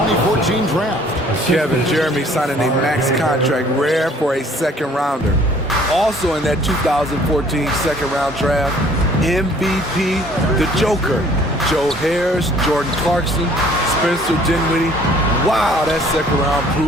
draft. Kevin, Jeremy signing a max contract, rare for a second rounder. Also in that 2014 second round draft, MVP, the Joker. Joe Harris, Jordan Clarkson, Spencer Dinwiddie. Wow, that second round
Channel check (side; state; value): both; normal; correlation 0.56